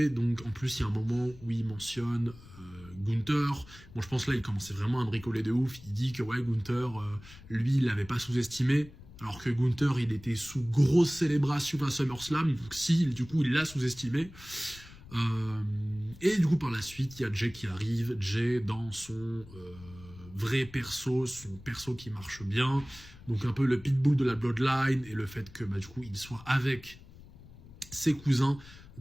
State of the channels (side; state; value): left; noise; rumble, 19 dB below the sound